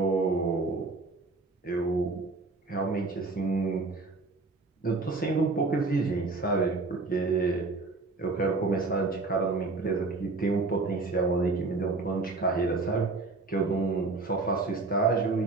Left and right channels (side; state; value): left; quieter; 3.6 dB